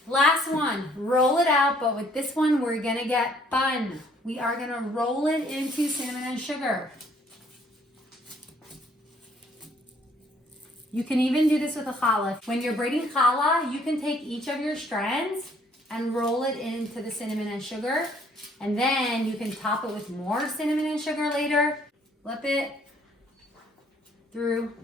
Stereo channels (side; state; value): both; normal; correlation 0.62